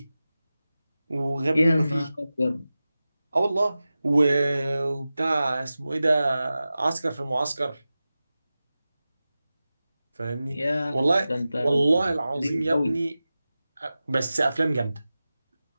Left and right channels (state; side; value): inverted; both; correlation -0.95